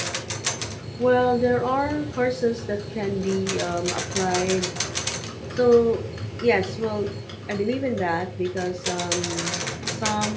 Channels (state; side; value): identical; both; correlation 1.00